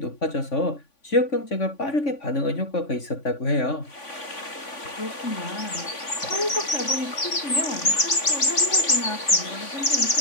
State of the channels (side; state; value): right; late; 3.5 ms